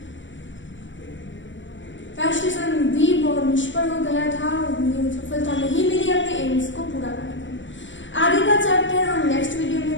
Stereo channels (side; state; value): right; late; 0.55 ms